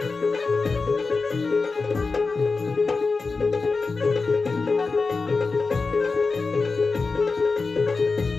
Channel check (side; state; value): right; quieter; 4.2 dB